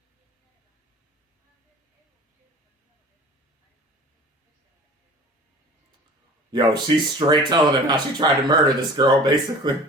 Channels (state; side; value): normal; both; correlation 0.42